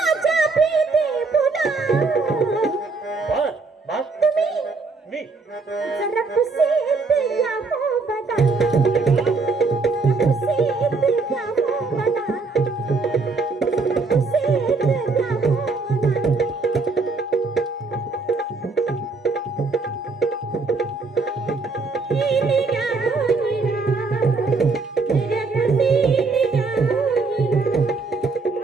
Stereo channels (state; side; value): quieter; left; 4.1 dB